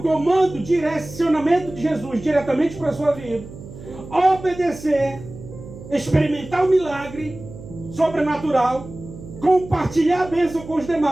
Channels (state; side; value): noise; right; hum, 15 dB below the sound